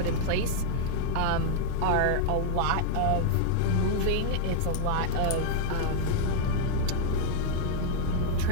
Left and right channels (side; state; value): both; different; correlation 0.00